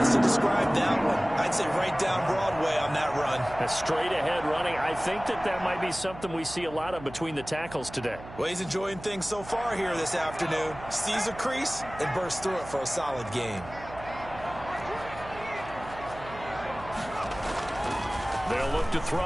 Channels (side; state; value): right; noise; hum, 15 dB below the sound